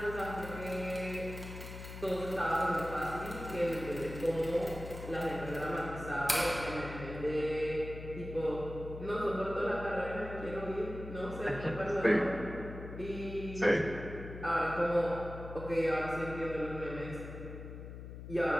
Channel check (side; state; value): left; noise; hum, 10 dB below the sound